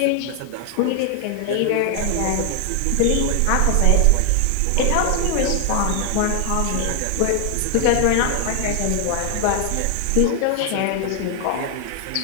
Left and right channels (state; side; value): different; both; correlation 0.00